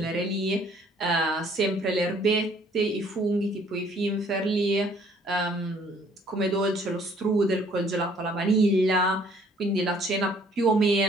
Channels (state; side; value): normal; both; correlation 0.60